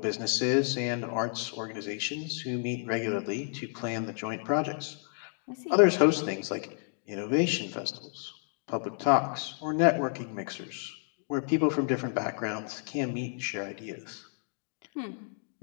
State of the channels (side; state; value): right; silent; 57 dB below the other